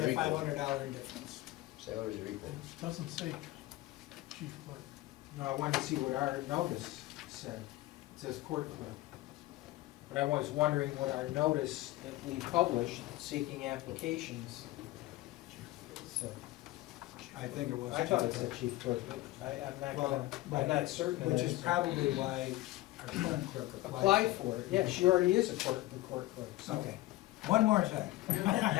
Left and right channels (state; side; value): quieter; right; 17.7 dB